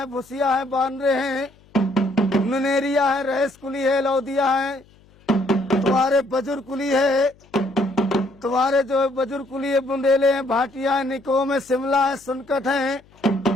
भुसिया है, बानरे हैं, नुनेरिया है, रहेस कुली है, लौदिया है। तुम्हारे बजुर कुली है, तुम्हारे जो बुजुर्ग कुली है, बुंदेले हैं, भाटिया है, निकोम है, शिमला है, सुनकट है।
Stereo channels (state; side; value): noise; left; hum, 29 dB below the sound